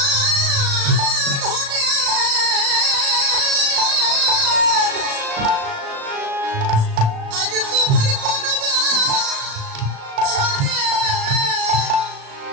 বাঁধনে আজ তোমার কোন বাঁধনে,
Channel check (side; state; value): left; late; 36 ms